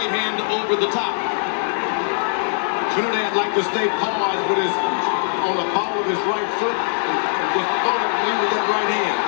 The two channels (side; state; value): right; silent; digital silence